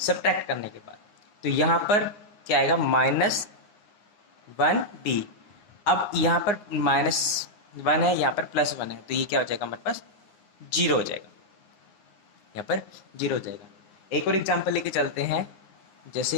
करने के बाद। तो यहाँ पर क्या आएगा, -1b। अब यहाँ पर -1 है, यहाँ पर +1 है, तो ये क्या हो जाएगा हमारे पास, 0 हो जाएगा। यहाँ पर 0 हो जाएगा। एक और एग्जांपल लेके चलते हैं।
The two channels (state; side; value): late; right; 9.7 ms